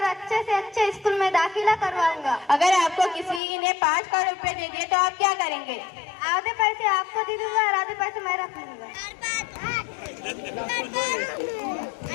अच्छे से अच्छे स्कूल में दाखिला करवाऊंगा। अगर आपको किसी ने 5 करोड़ रुपए दे दिए तो आप क्या करेंगे? आधे पैसे आपको दे दूंगा और आधे पैसे मैं रख लूंगा।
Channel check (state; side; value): drops out; right; at 3.4 s